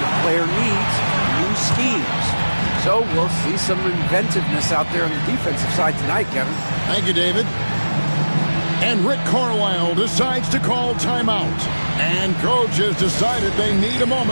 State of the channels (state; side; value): inverted; both; correlation -1.00